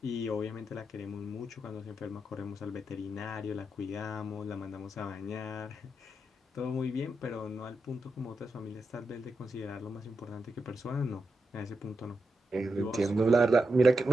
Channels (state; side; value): normal; both; correlation 0.86